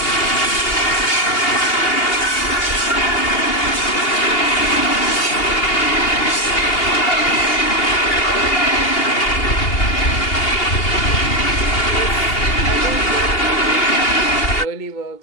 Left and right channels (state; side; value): late; right; 2.8 ms